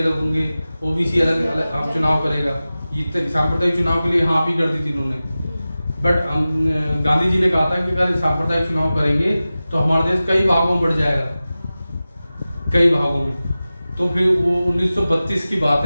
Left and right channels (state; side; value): inverted; both; correlation -0.96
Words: होंगे, OBC अलग अलग आप चुनाव करेगा, ये सांप्रदायिक चुनाव के लिए हाँ भी कर दी थी उन्होंने। बट गांधी जी ने कहा था कि अगर सांप्रदायिक चुनाव करेंगे तो हमारा देश कई भागों में बढ़ जाएगा, कई भागों में। तो फिर वो 1932 की बात